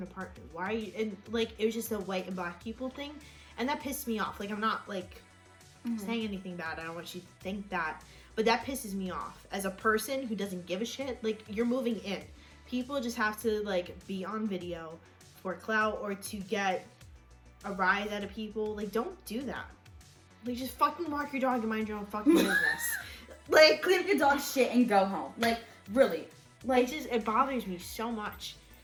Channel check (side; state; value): both; identical; correlation 1.00